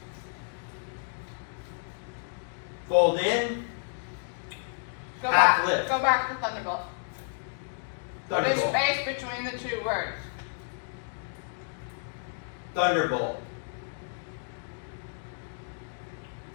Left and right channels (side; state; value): right; silent; digital silence